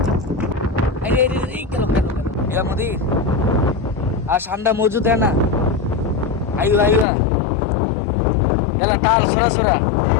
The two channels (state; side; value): drops out; right; at 7.1 s